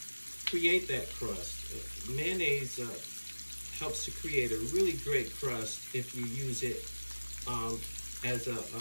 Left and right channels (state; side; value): inverted; both; correlation -1.00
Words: create that crust. Mayonnaise helps to create a really great crust if you use it as